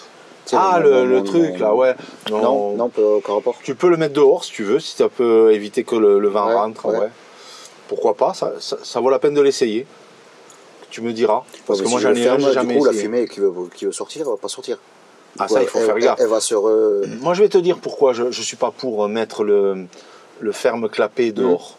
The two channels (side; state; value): both; identical; correlation 1.00